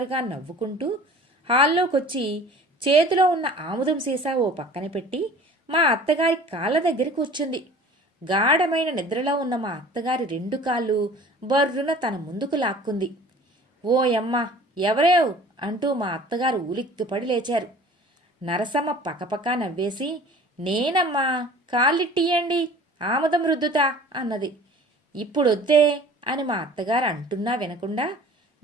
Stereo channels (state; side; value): normal; both; correlation 0.46